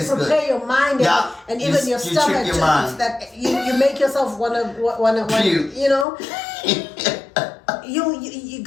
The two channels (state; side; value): drops out; right; at 6.1 s